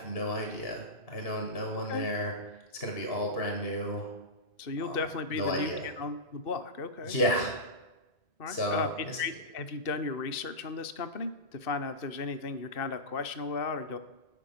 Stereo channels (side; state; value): right; late; 2.6 ms